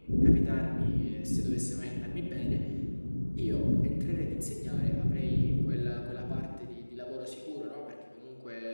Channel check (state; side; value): inverted; both; correlation -1.00